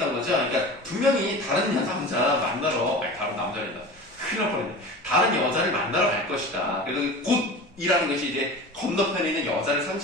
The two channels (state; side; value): normal; both; correlation 0.35